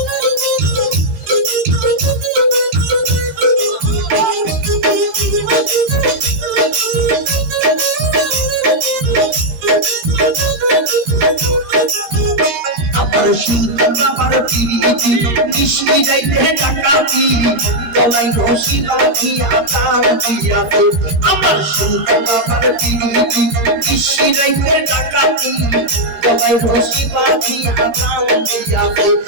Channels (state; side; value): late; left; 13 ms